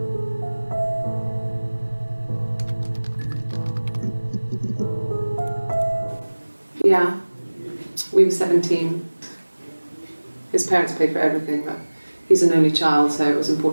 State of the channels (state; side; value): inverted; both; correlation -1.00